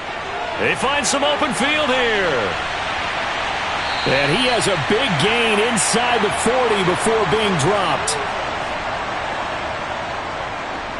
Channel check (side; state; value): both; identical; correlation 1.00